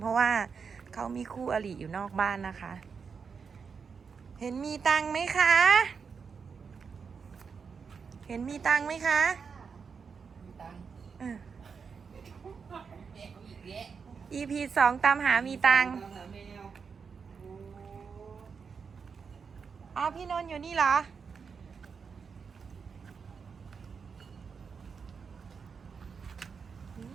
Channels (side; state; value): left; quieter; 5.8 dB